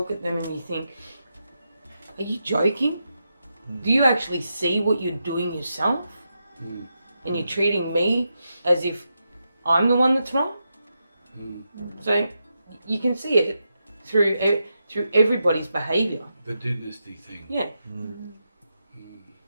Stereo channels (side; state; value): both; inverted; correlation -0.86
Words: at them and you think, are you joking? Do you actually see what you're doing yourself? And you're treating me as if I'm the one that's wrong? So you can see it through everybody's behaviour. The dynasty thing. Yeah.